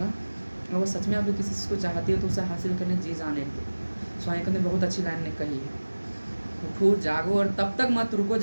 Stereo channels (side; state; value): both; inverted; correlation -1.00